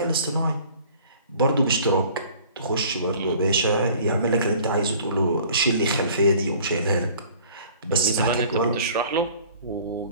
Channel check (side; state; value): both; inverted; correlation -0.50